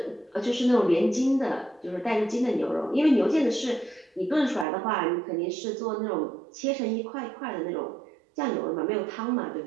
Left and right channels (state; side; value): drops out; left; at 4.7 s